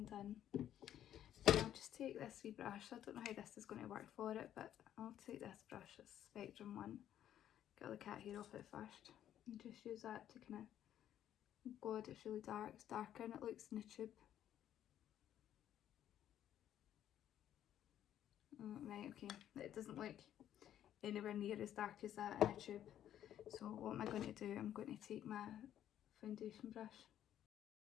in. And I'll just take this wee brush. I don't know how this is going to work for it, but I'll take this brush, this Spectrum one, get all the cat hair off it first, and just use that to kind of, oh god, it's really dark, it's darker than it looks in the tube. Right, okay, it doesn't look anywhere near as dark as that in a tube. So what am I going to do? I'm going to take my foundation brush.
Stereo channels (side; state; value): right; quieter; 11.0 dB